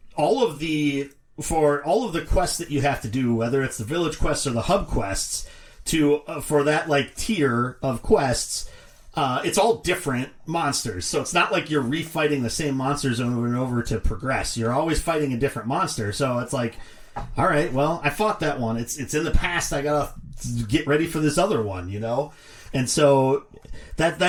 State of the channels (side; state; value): both; identical; correlation 1.00